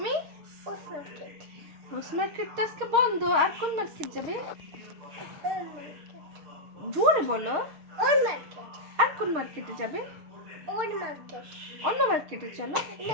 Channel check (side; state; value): left; late; 6.4 ms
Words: রোজ মার্কেট তো আজকে বন্ধ। আর কোন মার্কেট যাবে? জোরে বলো। আর কোন মার্কেটে যাবে? অন্য মার্কেটে চলো।